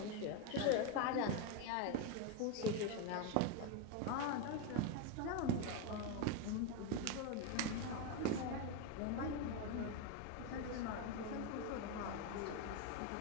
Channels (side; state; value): both; different; correlation 0.02